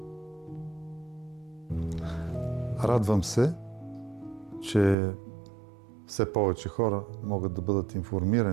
Радвам се, че все повече хора могат да бъдат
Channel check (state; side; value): drops out; left; at 5.0 s